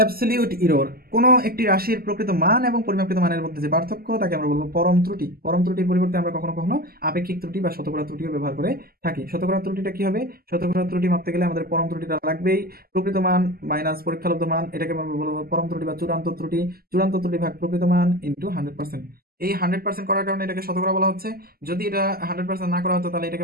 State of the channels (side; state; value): left; late; 0.44 ms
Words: ইরর, কোনো একটি রাশির প্রকৃত মান এবং পরিমাপকৃত মানের মধ্যে যে পার্থক্য তাকে আমরা বলবো পরম ত্রুটি। পরম ত্রুটির পরিবর্তে আমরা কখনো কখনো আপেক্ষিক ত্রুটি বা শতকরা ত্রুটিও ব্যবহার করে থাকি। শতকরা ত্রুটিটা কি হবে? শতকরা ত্রুটি মাপতে গেলে আমাদের পরম ত্রুটিটা লাগবেই। প্রকৃত মান মাইনাস পরীক্ষালব্ধ মান, এটাকে আমরা বলবো পরম ত্রুটি বা চূড়ান্ত ত্রুটি। চূড়ান্ত ত্রুটি ভাগ প্রকৃত মান ইন্টু 100%। এই 100% করার কারণে এটাকে শতকরা বলা হচ্ছে। যদি এটা 100% না করা হতো তাহলে